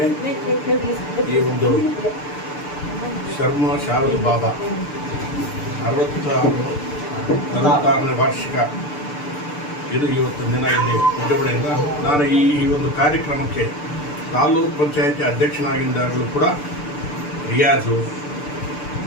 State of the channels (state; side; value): late; right; 6.8 ms